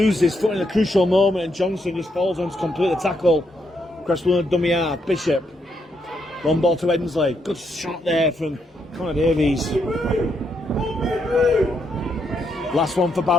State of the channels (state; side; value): normal; both; correlation 0.78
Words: his foot in a crucial moment, and Johnson just falls on to complete the tackle. Cresswell and dummy half. Bishop. One ball to Ensley. Good shot there from Connor Davies. Last one for